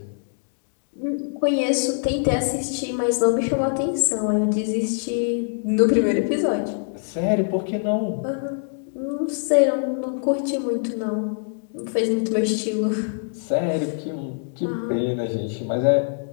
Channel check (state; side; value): silent; right; digital silence